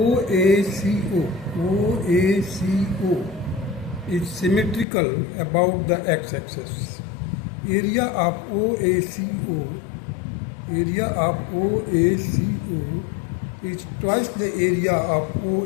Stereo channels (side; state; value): right; drops out; at 4.9 s